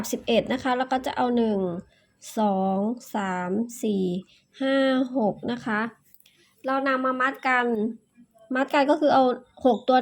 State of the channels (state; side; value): identical; both; correlation 1.00